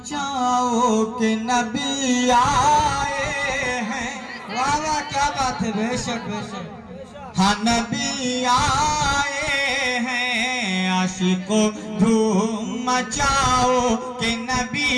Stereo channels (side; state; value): both; identical; correlation 1.00